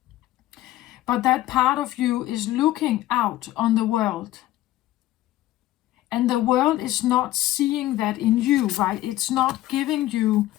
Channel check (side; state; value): right; quieter; 15.3 dB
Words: But that part of you is looking out on the world. And the world is not seeing that in you, right? It's not giving you